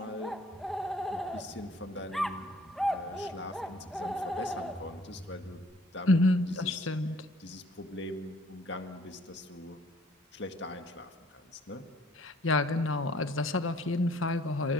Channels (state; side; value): normal; both; correlation 0.58